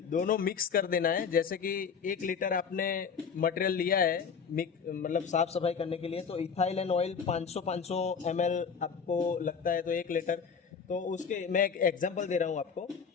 दोनों मिक्स कर देना है। जैसे कि 1 लीटर आपने मटेरियल लिया है मतलब साफ सफाई करने के लिए, तो इथाइल एंड ऑयल 500 ml आपको लगता है, तो 1 लीटर। तो उसके मैं एक एग्जांपल दे रहा हूँ आपको।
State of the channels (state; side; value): quieter; right; 6.2 dB